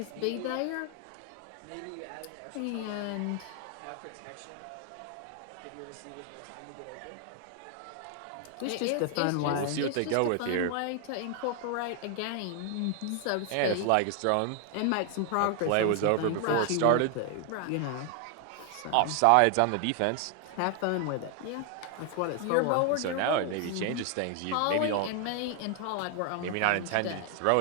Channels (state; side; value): different; both; correlation 0.00